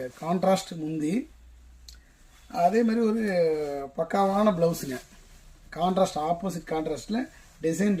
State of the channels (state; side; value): identical; both; correlation 1.00